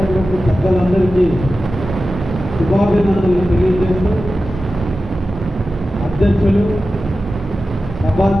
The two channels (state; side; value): normal; both; correlation 0.93